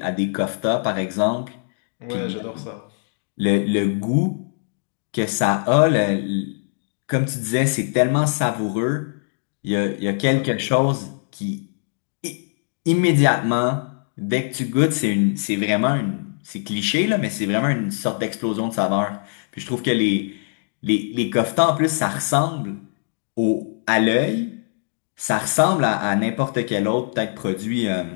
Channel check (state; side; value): silent; right; digital silence